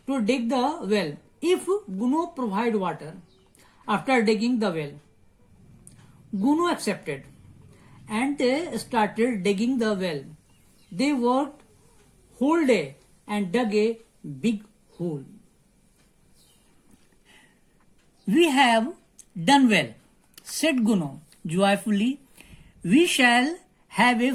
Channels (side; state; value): both; identical; correlation 1.00